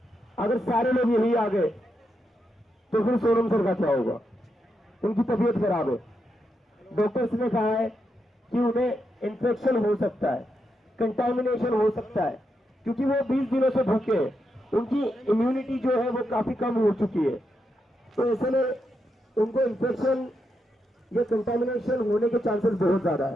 अगर सारे लोग यही आ गए तो फिर सोनम सर का क्या होगा? उनकी तबीयत खराब है, डॉक्टर्स ने कहा है कि उन्हें इन्फेक्शन हो सकता है, कंटामिनेशन हो सकता है, क्योंकि वो 20 दिनों से भूखे हैं, उनकी इम्यूनिटी जो है वो काफी कम हो चुकी है। तो ऐसे में उनको इन्फेक्शन या कंटामिनेशन होने के चांसेस बहुत ज्यादा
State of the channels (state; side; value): normal; both; correlation 0.83